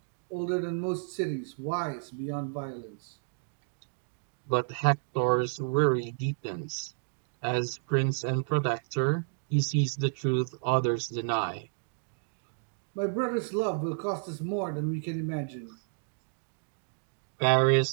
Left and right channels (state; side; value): silent; left; digital silence